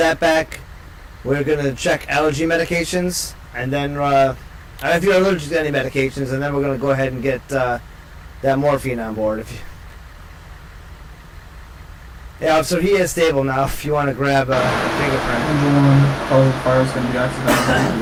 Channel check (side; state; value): both; identical; correlation 1.00